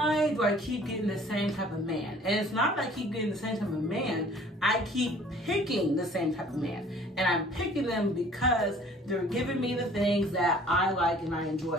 do I keep getting the same type of man? And it's not that I keep getting the same type of man, I keep picking the same type of man. And I'm picking them because they're giving me the things that I like and I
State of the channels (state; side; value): normal; both; correlation 0.53